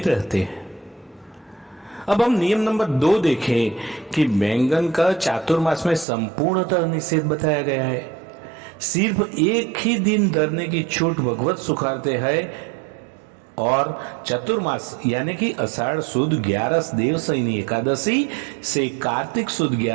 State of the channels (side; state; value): left; drops out; at 6.1 s